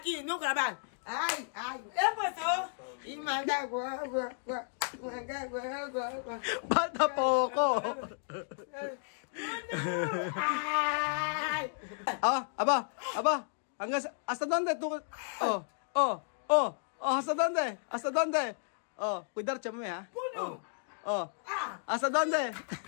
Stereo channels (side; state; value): right; silent; digital silence